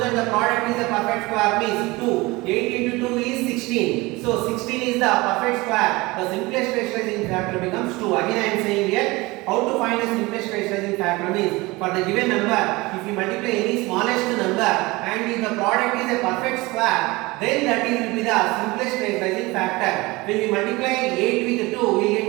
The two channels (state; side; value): quieter; left; 22.4 dB